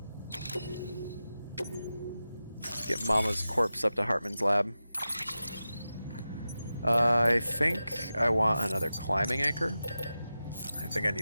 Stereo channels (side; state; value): both; inverted; correlation -0.93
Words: Get Mama's corpse up to Heartman's lab. I think I want another climbing anchor. I think I